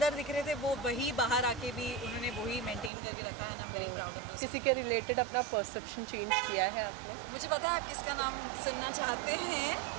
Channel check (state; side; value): drops out; left; at 2.9 s